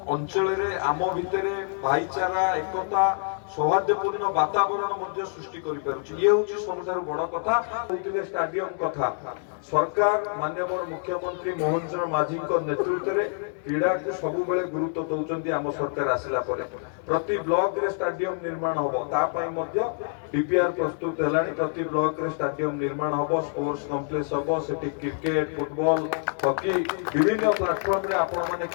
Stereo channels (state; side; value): silent; right; 61 dB below the other